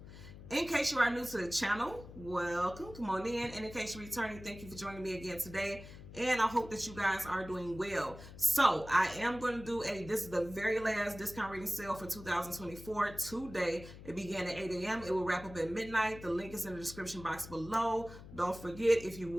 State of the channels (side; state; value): left; noise; hum, 15 dB below the sound